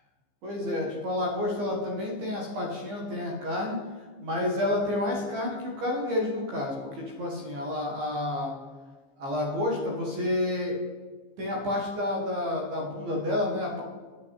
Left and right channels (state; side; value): late; left; 15 ms